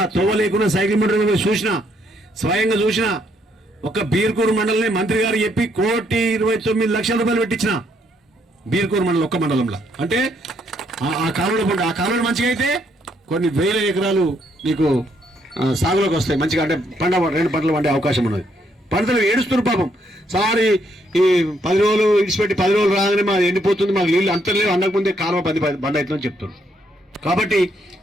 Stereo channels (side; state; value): both; normal; correlation 0.72